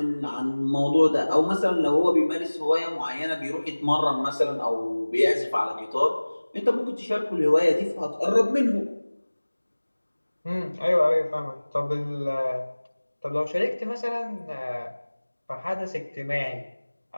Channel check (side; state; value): both; inverted; correlation -1.00